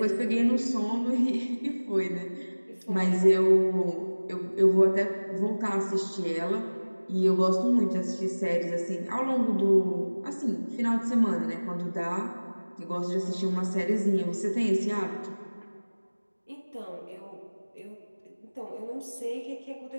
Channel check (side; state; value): both; inverted; correlation -1.00